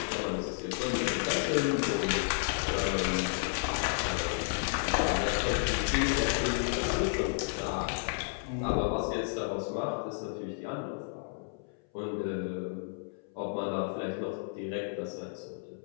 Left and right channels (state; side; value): silent; right; 56 dB below the other